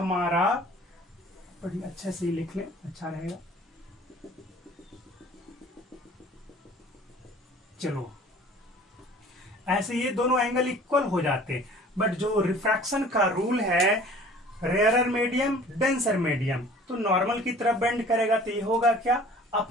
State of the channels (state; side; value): normal; both; correlation 0.48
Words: बड़ी अच्छे से लिख लें अच्छा रहेगा, चलो ऐसे ये दोनों एंगल इक्वल हो जाते। बट जो रिफ्रैक्शन का रूल है, रेयरर मीडियम डेंसर मीडियम, तो नॉर्मल की तरफ बेंड करेगा तो ये होगा क्या,